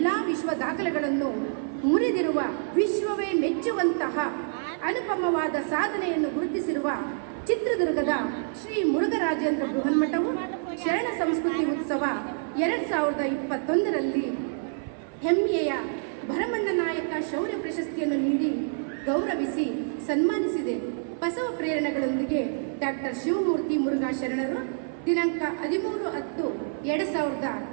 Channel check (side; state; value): left; silent; 60 dB below the other